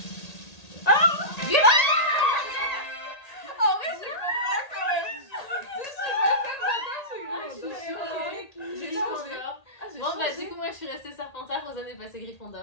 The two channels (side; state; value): right; late; 1.8 ms